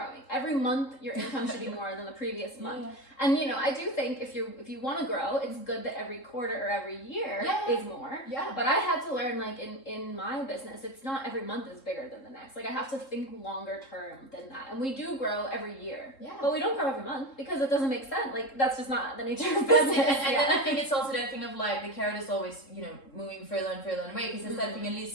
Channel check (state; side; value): late; right; 3.7 ms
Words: Every month your income should be more than the previous month. Yeah. And I do think if you want to grow, it's good that every quarter or every year is more. Yeah. But I had to learn, like in my business, it's not every month is bigger than the next. Like I have to think longer term than that. And we do grow every year. Yeah. But we don't grow every month because it doesn't make sense. Like that's just not the nature of business. And then I think it's also that thing of like the carrot is always, moving further and further away, because it's that thing, at